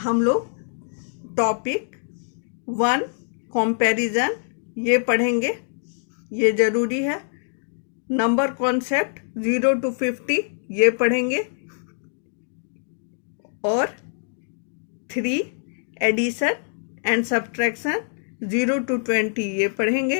लोग टॉपिक 1 कंपैरिजन ये पढ़ेंगे, ये ज़रूरी है। नंबर कॉन्सेप्ट 0 to 50 ये पढ़ेंगे और 3 एडिशन एंड सब्ट्रैक्शन 0 to 20 ये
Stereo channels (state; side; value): silent; right; digital silence